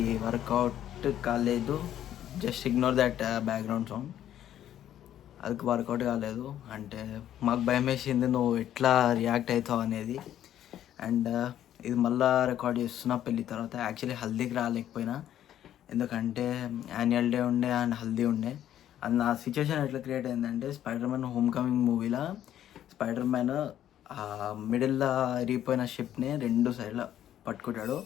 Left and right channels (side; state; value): right; quieter; 11.3 dB